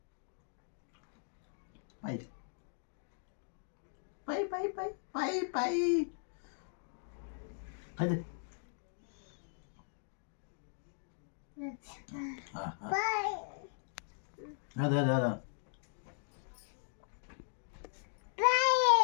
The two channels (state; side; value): silent; right; digital silence